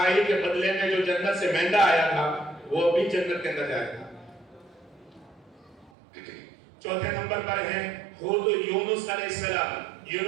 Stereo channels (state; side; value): drops out; left; at 5.9 s